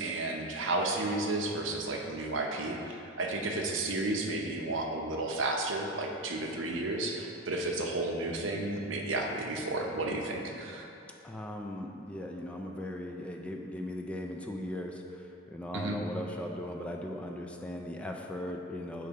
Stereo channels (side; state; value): both; normal; correlation 0.21